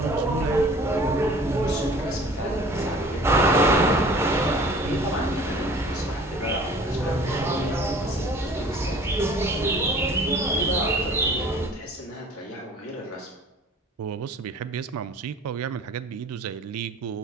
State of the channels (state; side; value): normal; both; correlation 0.48